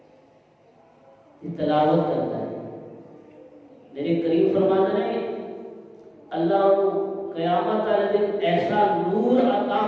کی تلاوت کرتا ہے میرے کریم فرماتے ہیں اللہ کو قیامت والے دن ایسا نور عطا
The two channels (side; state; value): both; identical; correlation 1.00